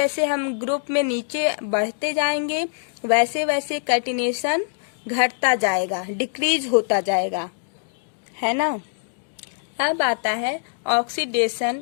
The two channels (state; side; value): silent; right; digital silence